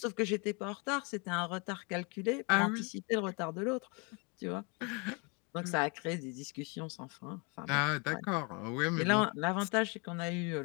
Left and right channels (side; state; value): right; quieter; 32.3 dB